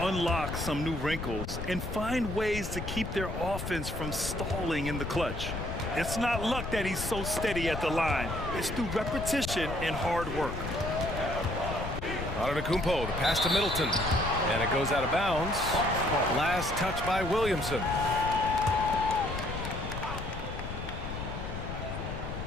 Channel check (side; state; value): left; noise; rumble, 6 dB below the sound